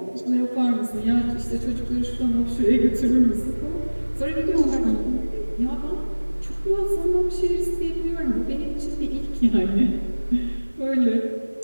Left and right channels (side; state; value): both; inverted; correlation -1.00